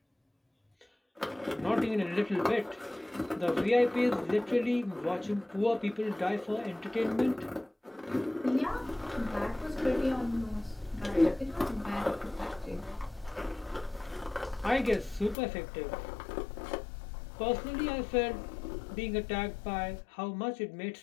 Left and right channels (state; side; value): drops out; right; at 15.4 s